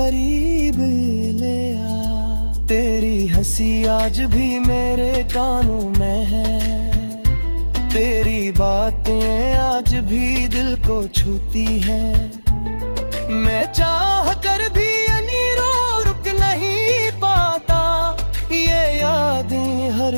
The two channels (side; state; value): both; inverted; correlation -1.00